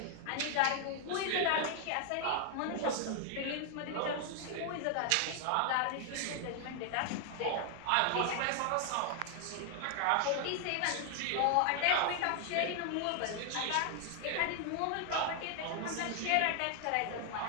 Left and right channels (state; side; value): different; both; correlation 0.00